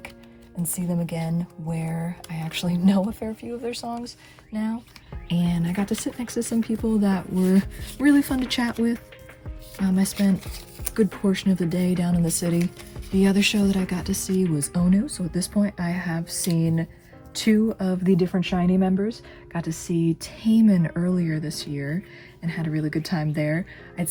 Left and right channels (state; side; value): identical; both; correlation 1.00